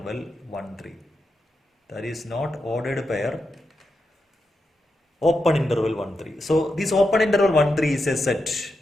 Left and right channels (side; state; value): both; normal; correlation 0.87